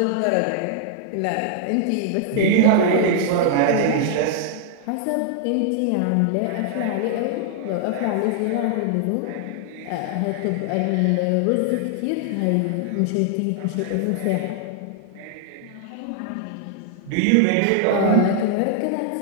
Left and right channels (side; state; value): both; different; correlation 0.00